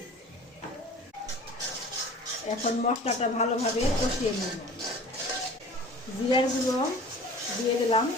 এখন মশলাটা ভালোভাবে কষিয়ে নেব। জিরার গুঁড়ো দিয়ে দিলাম।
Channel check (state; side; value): normal; both; correlation 0.43